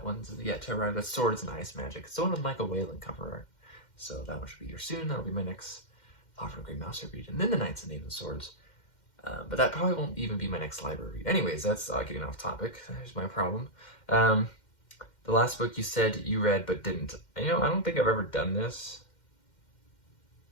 one's yet to arrive. That's Swords and Ice Magic. It's the one with Michael Whalen cover art, so that one should be here soon. That'll be my next Fafhrd and Grey Mouser read, and then The Knights and Knave of Swords. But that probably won't even be my next library read. Anyways, that's getting off topic. There's my problem. The last book you said you read but didn't. And, I don't think I've ever done this.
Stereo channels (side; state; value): right; late; 2.1 ms